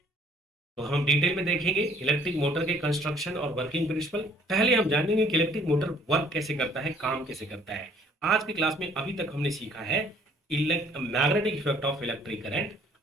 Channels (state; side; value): normal; both; correlation 0.59